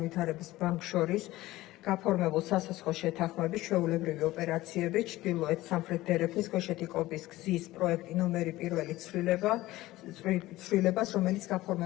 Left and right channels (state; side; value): quieter; right; 17.3 dB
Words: ბანკს შორის გაფორმებულ სასახლო შეთანხმების ჩვეულებრივი ოპერაციები ჩრდილოეთ სამხრეთ დერეფნის ქვეშეთი კობის გზის პროექტი ნომერი 1 ცვლილებას, რომელიც